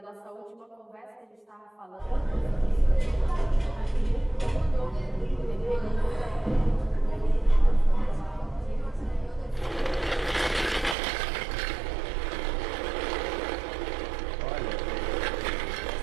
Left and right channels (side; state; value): left; drops out; at 11.0 s